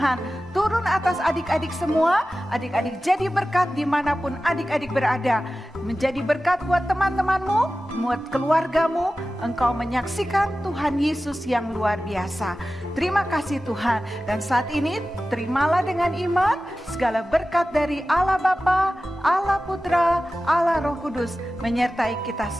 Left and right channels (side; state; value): both; normal; correlation 0.95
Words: turun atas adik-adik semua. Adik-adik jadi berkat dimanapun adik-adik berada. Menjadi berkat buat teman-temanmu, buat keluargamu. Engkau menyaksikan Tuhan Yesus yang luar biasa. Terima kasih Tuhan. Dan saat ini terimalah dengan iman segala berkat dari Allah Bapa, Allah Putra, Allah Roh Kudus menyertai kita